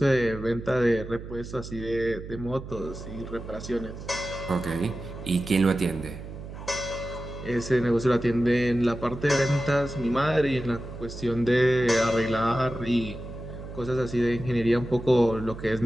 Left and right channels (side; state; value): right; noise; hum, 11 dB below the sound